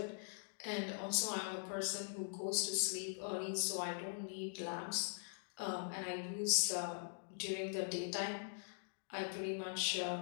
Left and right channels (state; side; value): silent; right; digital silence